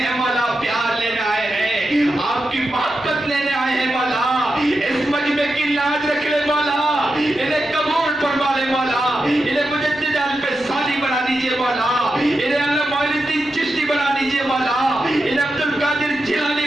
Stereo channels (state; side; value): normal; both; correlation 0.89